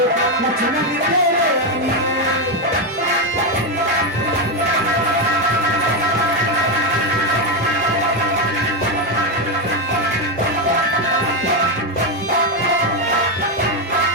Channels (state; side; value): normal; both; correlation 0.07